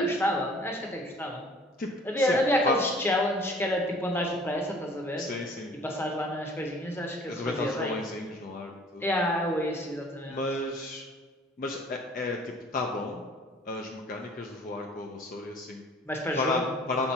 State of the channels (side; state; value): both; normal; correlation 0.52